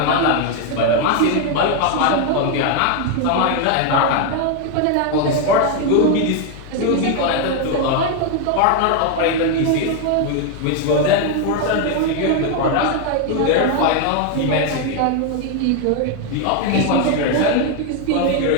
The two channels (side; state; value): both; different; correlation 0.01